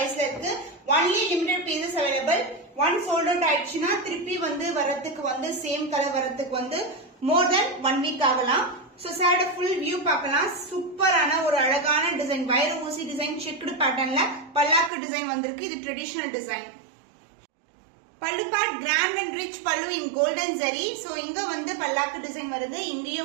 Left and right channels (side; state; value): left; drops out; at 14.9 s